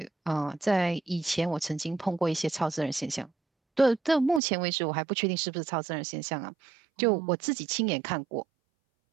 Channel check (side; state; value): left; drops out; at 4.4 s